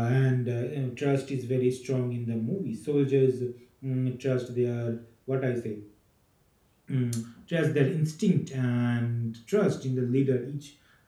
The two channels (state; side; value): identical; both; correlation 1.00